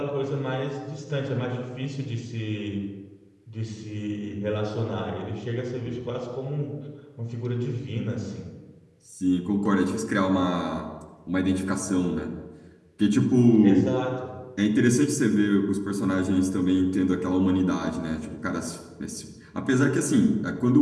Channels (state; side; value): identical; both; correlation 1.00